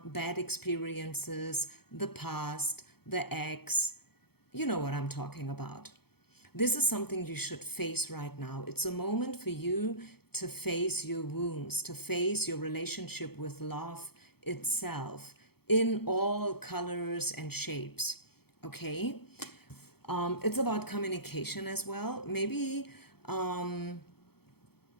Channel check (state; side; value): late; right; 0.96 ms